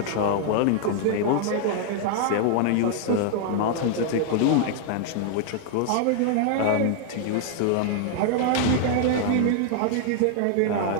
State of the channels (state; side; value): different; both; correlation 0.00